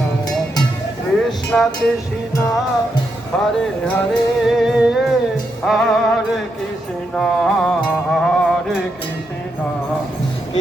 কৃষ্ণ কৃষ্ণ হরে হরে হরে কৃষ্ণ হরে কৃষ্ণ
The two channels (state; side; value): normal; both; correlation 0.82